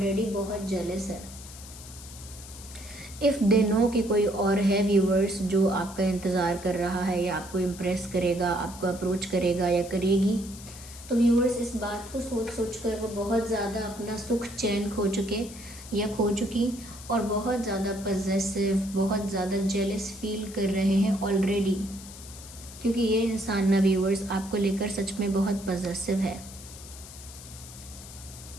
बहुत जेलस है। इफ़ दे नो कि कोई और है व्यूअर्स जो आपका इंतज़ार कर रहा है या आपको इम्प्रेस करेगा, आपको अप्रोच करेगा या करेगी, तो व्यूअर्स इस बात को सोच कर वो बहुत ज़्यादा अपना सुख चैन खो चुके या खो चुकी, और बहुत ज़्यादा पॉजेसिव, बहुत ज़्यादा जेलस फील कर रहे हैं ऑलरेडी, क्योंकि ये इंसान ना व्यूअर्स आपको लेकर सच में बहुत पॉजेसिव है।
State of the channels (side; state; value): left; noise; hiss, 16 dB below the sound